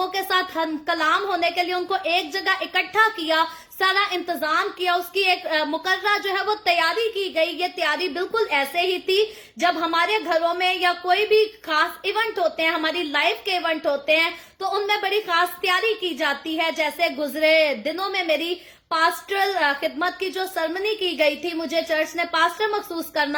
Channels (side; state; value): both; identical; correlation 1.00